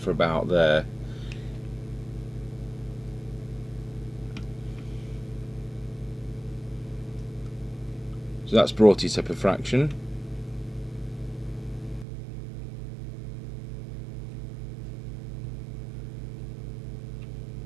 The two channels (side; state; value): left; drops out; at 12.1 s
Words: about there. So that's brought it up a fraction.